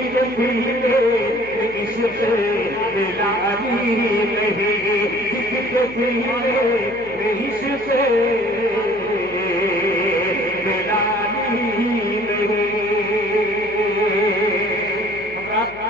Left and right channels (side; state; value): left; noise; hum, 23 dB below the sound